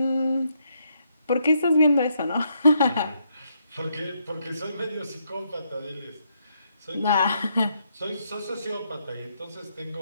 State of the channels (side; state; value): both; inverted; correlation -0.76